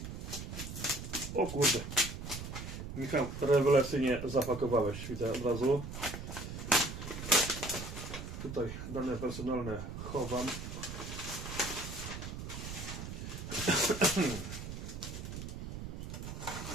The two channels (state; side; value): noise; right; rumble, 8 dB below the sound